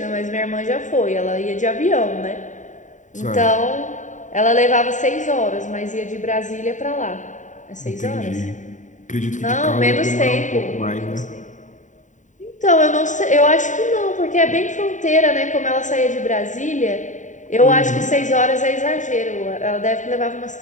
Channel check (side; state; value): right; late; 0.36 ms